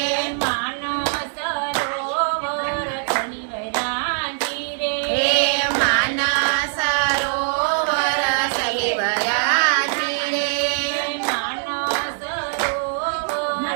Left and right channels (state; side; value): silent; left; digital silence